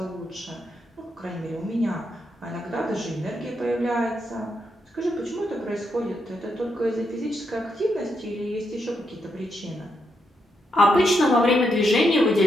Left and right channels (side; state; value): both; normal; correlation 0.81